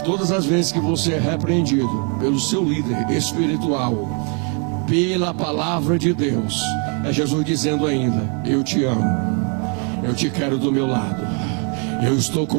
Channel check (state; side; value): quieter; left; 37.8 dB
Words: todas as vezes que você é repreendido pelo seu líder espiritual, pela palavra de Deus, é Jesus dizendo ainda: eu te amo, eu te quero do meu lado, eu estou